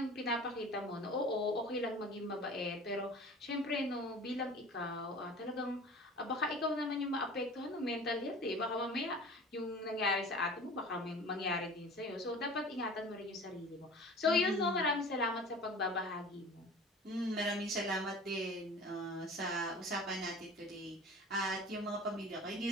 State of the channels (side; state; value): both; normal; correlation 0.41